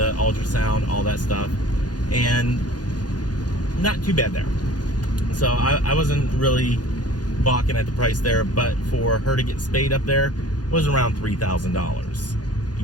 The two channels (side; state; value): right; late; 0.69 ms